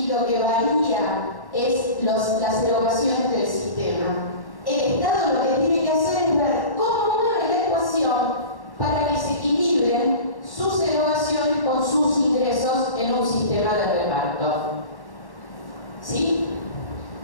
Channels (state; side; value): late; right; 1.1 ms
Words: lo que varía es las erogaciones del sistema. El Estado lo que tiene que hacer es ver cómo mueve la ecuación para que se equilibren sus erogaciones con sus ingresos en un sistema de reparto. ¿Sí?